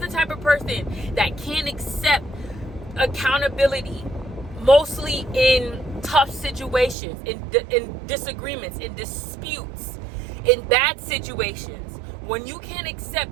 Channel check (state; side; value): drops out; left; at 7.0 s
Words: type of person that can't accept accountability, mostly in tough situations, in disagreements, in disputes, in bad situations, when you can't